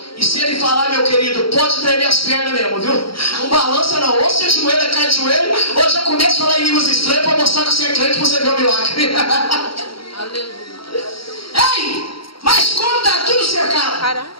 E se ele falar, meu querido, pode tremer as pernas mesmo, viu? Não balança não, ou você ajoelha, cai de joelho, ou já começa a falar em línguas estranhas para mostrar que você é crente para você ver o milagre. Aleluia. Ei, mas como está tudo cercado,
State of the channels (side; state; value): right; late; 0.74 ms